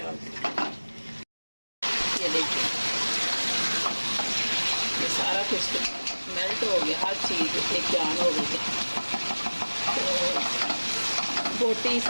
हूँ। ये देखिए ये सारा कुछ मेल्ट हो गया, हर चीज़ एक जान हो गई है। तो बोटी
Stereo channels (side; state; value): both; inverted; correlation -1.00